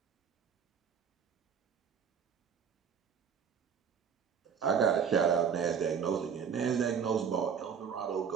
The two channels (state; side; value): quieter; left; 7.2 dB